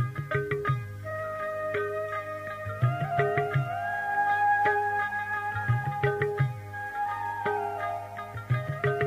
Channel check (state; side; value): identical; both; correlation 1.00